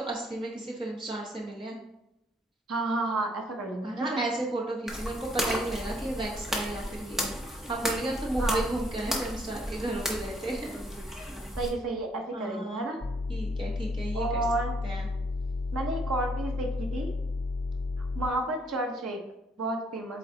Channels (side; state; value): both; normal; correlation 0.68